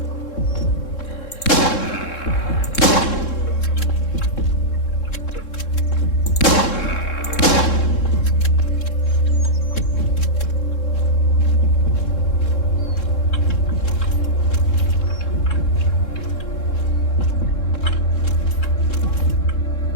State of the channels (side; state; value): right; late; 3.7 ms